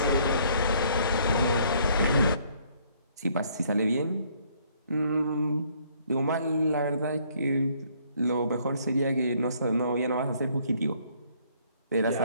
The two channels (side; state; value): both; inverted; correlation -0.64